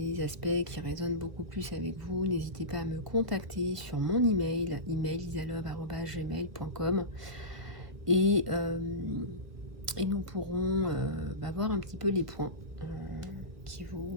aspects qui résonnent beaucoup plus avec vous, n'hésitez pas à me contacter sur mon email isalove@gmail.com, et nous pourrons voir un petit peu les points qui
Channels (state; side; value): late; left; 1.5 ms